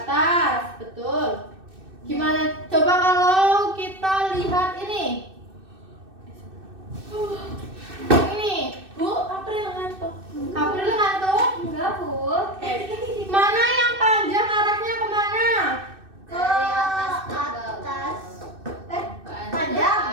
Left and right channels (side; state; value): left; late; 2.6 ms